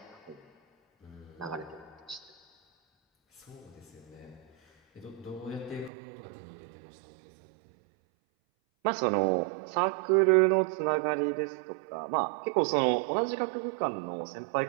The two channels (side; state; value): left; drops out; at 5.9 s